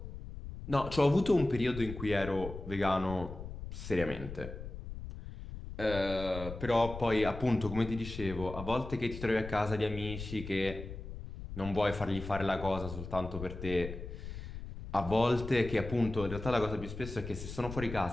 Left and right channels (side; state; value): left; noise; rumble, 10 dB below the sound